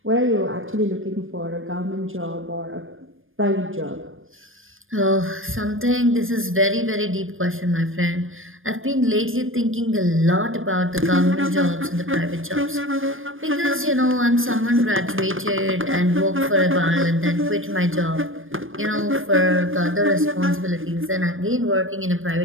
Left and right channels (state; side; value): late; left; 0.59 ms